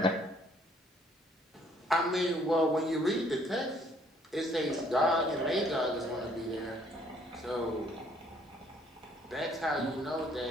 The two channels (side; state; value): both; normal; correlation 0.63